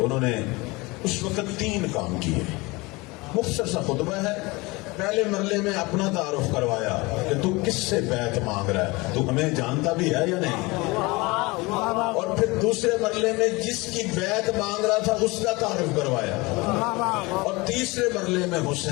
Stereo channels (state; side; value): quieter; right; 23.8 dB